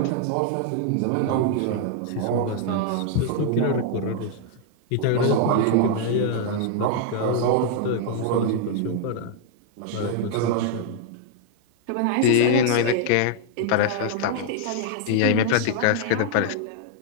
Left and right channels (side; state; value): both; different; correlation 0.00